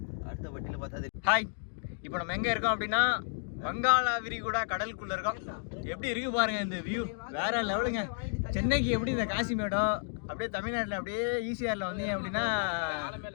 அடுத்த வட்டியில் பார்த்தா. ஹாய், இப்போ நம்ம எங்கே இருக்கோம் அப்படின்னா வங்காள விரிகுடா கடலுக்குள்ள இருக்கோம். எப்படி இருக்கு பாருங்க இந்த வியூ, வேற லெவலுங்க. சென்னைக்கு எப்படி இந்த காசிமேடம் அப்படியே தமிழ்நாட்டில் அப்படியே ஈசிஆரில் வந்தீங்க அப்படின்னா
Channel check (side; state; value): right; silent; digital silence